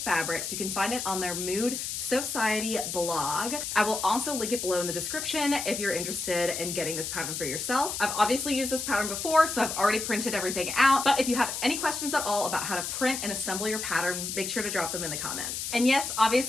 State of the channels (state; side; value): noise; left; hiss, 4 dB below the sound